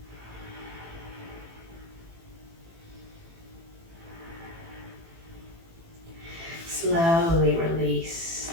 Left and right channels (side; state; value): left; late; 18 ms